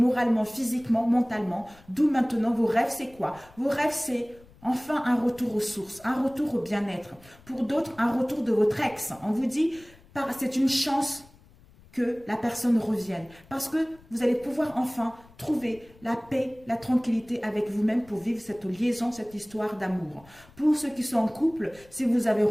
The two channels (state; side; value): noise; left; rumble, 25 dB below the sound